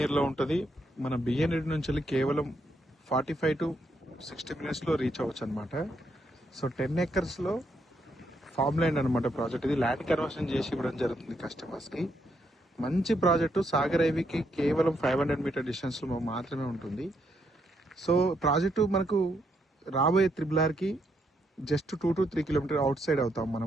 లో ఉంటది. మన బిఎన్ రెడ్డి నుంచి వెళ్ళి కేవలం 45 to 60 minutes లో రీచ్ అవ్వచ్చు అనమాట. సో 10 acres లో ఫార్మ్ ల్యాండ్ అనమాట ప్రాజెక్ట్. ఇది ల్యాండ్ కన్వర్షన్ చేసి ఇవ్వడం జరుగుతుంది కస్టమర్స్ కి. మంచి ప్రాజెక్టు సాగర్ హైవేకి కేవలం 500 మీటర్ డిస్టెన్స్ లో మాత్రమే ఉంటుంది. సో ప్రాజెక్టు మనకు రాబోయే త్రిబుల్ కి just 2 to 3 kilometer outside అవుతాం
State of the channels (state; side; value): normal; both; correlation 0.76